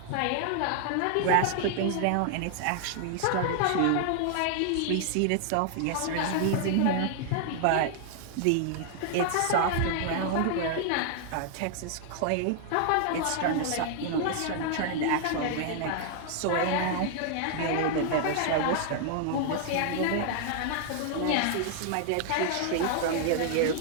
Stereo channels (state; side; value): different; both; correlation 0.00